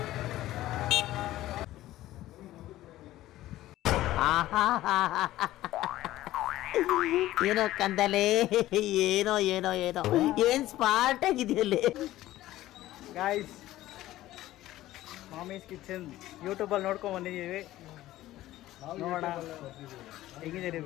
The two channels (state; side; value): quieter; right; 15.2 dB